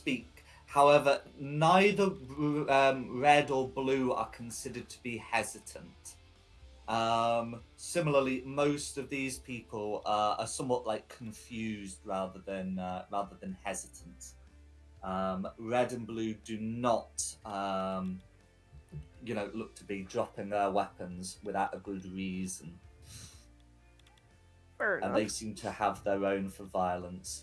However, neither Red or Blue are considered to be hesitant. Similarly, most of these people are somewhat like confused rather than hesitant. Red and Blue do not, look to be dropping their weapons without a good reason. Fair And enough. they seem to have their own for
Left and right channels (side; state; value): both; identical; correlation 1.00